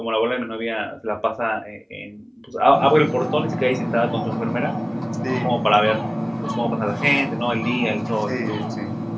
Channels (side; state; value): both; identical; correlation 1.00